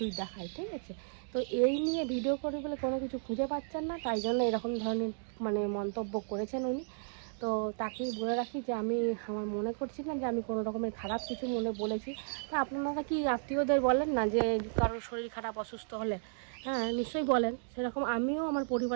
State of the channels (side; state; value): left; silent; digital silence